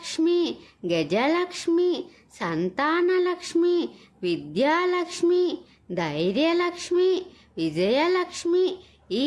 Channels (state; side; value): identical; both; correlation 1.00